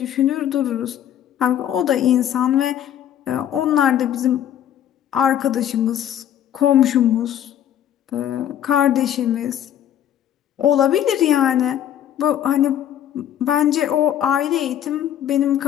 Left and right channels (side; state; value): right; quieter; 10.5 dB